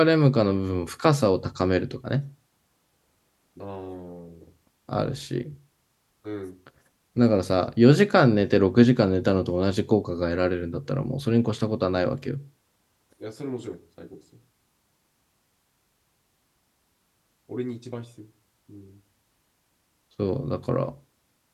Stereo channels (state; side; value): identical; both; correlation 1.00